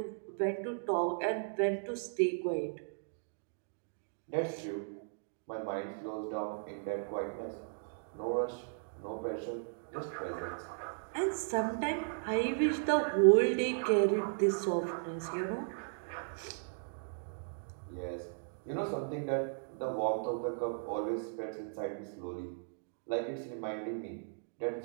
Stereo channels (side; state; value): left; silent; digital silence